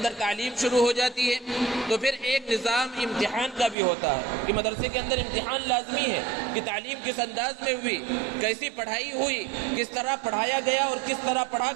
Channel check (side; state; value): left; drops out; at 3.8 s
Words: تعلیم شروع ہو جاتی ہے، تو پھر ایک نظام امتحان کا بھی ہوتا ہے کہ مدرسے کے اندر امتحان لازمی ہے کہ تعلیم کس انداز میں ہوئی، کیسی پڑھائی ہوئی، کس طرح پڑھایا گیا اور کس طرح پڑھا